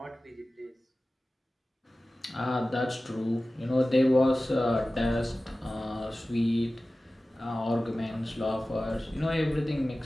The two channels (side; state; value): both; normal; correlation 0.96